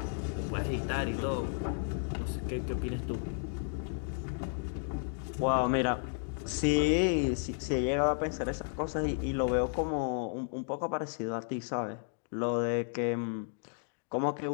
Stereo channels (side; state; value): right; silent; 56 dB below the other